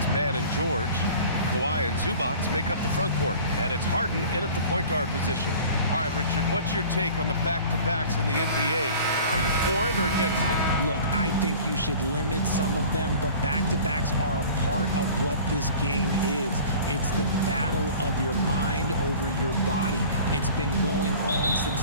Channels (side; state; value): both; inverted; correlation -0.43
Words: Mann and George. Kawhi and Zubac make up the front court. And it's Harden in at the point guard position. All right, Richard, what's your take on the back-to-backs in the NBA? Are you for it or against it? Look, I think you should limit some of them, but back-to-backs are a part of what this game is. It's the battle of your mind over your body. It's been going on